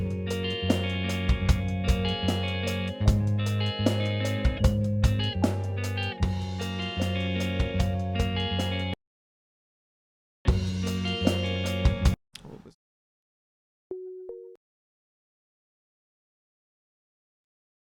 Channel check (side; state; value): both; identical; correlation 1.00